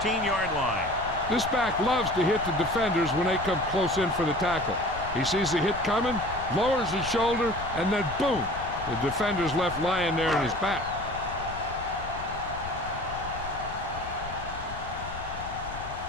line. This back loves to hit the defenders when they come close in for the tackle. He sees the hit coming, lowers his shoulder, and then boom, the defender's left lying there in his back.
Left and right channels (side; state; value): left; noise; rumble, 12 dB below the sound